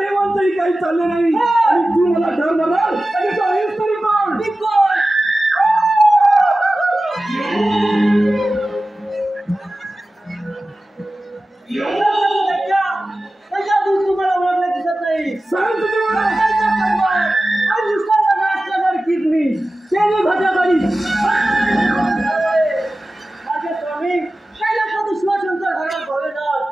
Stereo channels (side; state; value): both; normal; correlation 0.95